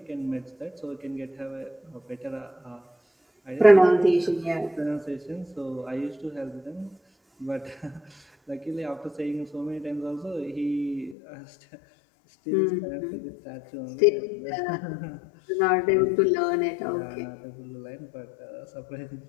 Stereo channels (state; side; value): drops out; right; at 11.2 s